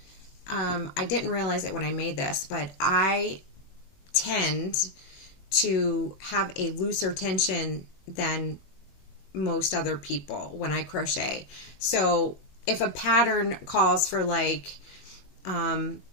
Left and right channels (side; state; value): right; late; 21 ms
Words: I didn't realize it when I made this, but I tend to have a looser tension than most other people when I crochet. So if a pattern calls for like an